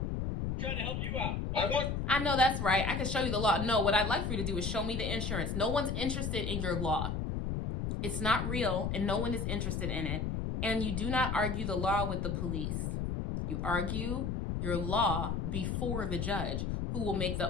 I'm trying to help you out. I know that's right. I can show you the law. No, what I'd like for you to do is show me the insurance. No one's interested in your law. It's not real, and no one is interested in it. And you do not argue the law with the police. You argue your law before the judge, who will make the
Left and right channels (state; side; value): noise; left; rumble, 1 dB below the sound